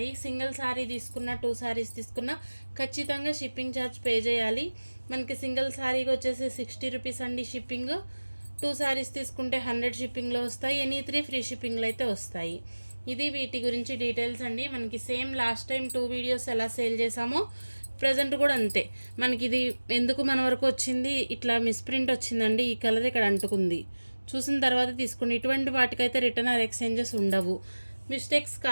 సింగిల్ శారీ తీసుకున్న 2 శారీస్ తీసుకున్న ఖచ్చితంగా షిప్పింగ్ ఛార్జ్ పే చేయాలి. మనకి సింగిల్ శారీకి వచ్చేసి 60 రూపీస్ అండి షిప్పింగ్. 2 శారీస్ తీసుకుంటే 100 షిప్పింగ్లో వస్తాయి. ఎనీ 3 ఫ్రీ షిప్పింగ్లో అయితే వస్తాయి. ఇది వీటి గురించి డీటెయిల్స్ అండి. మనకి సేమ్ లాస్ట్ టైం 2 వీడియోస్ ఎలా సేల్ చేసామో ప్రజెంట్ కూడా అంతే. మనకి ఇది ఎందుకు మన వరకు వచ్చింది, ఇట్లా మిస్ప్రింట్ వచ్చిందండి, ఈ కలర్ ఇక్కడ అంటుకుంది, చూసిన తర్వాత తీసుకోండి. ఇటువంటి వాటికైతే రిటర్న్ ఆర్ ఎక్స్చేంజెస్ ఉండవు. మిస్టేక్స్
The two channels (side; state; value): both; inverted; correlation -1.00